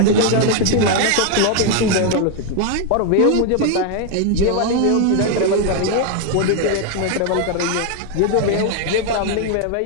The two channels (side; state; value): both; different; correlation 0.01